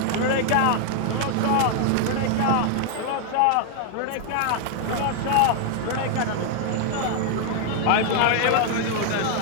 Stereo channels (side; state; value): both; different; correlation 0.00